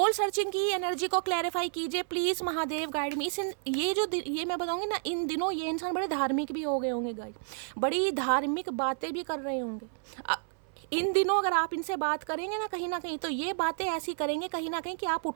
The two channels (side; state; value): left; silent; 57 dB below the other